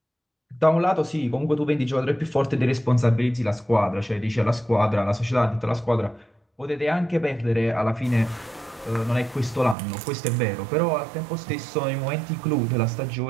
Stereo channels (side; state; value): left; drops out; at 9.8 s